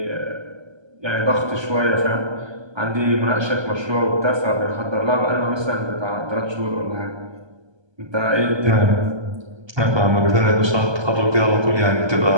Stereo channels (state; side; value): late; left; 1.2 ms